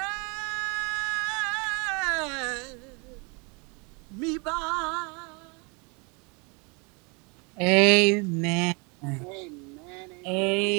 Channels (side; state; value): left; quieter; 31.4 dB